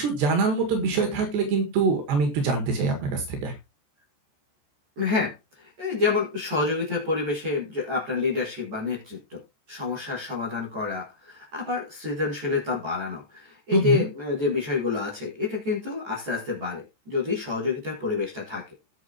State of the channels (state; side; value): late; left; 14 ms